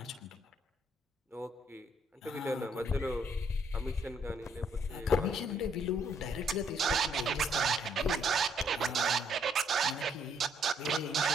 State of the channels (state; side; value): normal; both; correlation 0.70